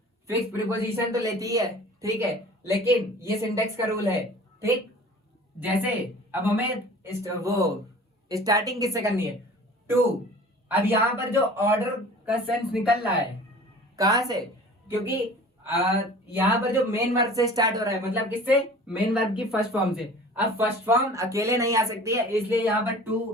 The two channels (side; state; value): both; normal; correlation 0.44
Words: फिक्स प्रीपोजिशन तो लेती है, ठीक है, लेकिन ये सिंटेक्स का रूल है, ठीक। जैसे अब हमें वो स्टार्टिंग किससे करनी है, टू। अब यहाँ पर जो ऑर्डर का सेंस निकल रहा है कहां से, क्योंकि यहाँ पर जो मेन वर्ब से स्टार्ट हो रहा है, मतलब किससे, मेन वर्ब की फर्स्ट फॉर्म से। अब फर्स्ट फॉर्म अकेले नहीं आ सकती है, इसलिए यहाँ पर